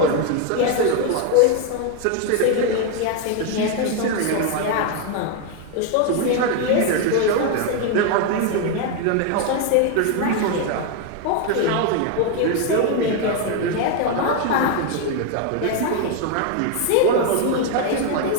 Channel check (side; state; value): both; different; correlation 0.01